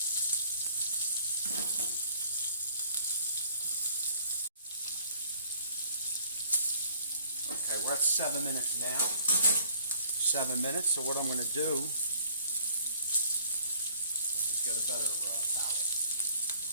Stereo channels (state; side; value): inverted; both; correlation -0.56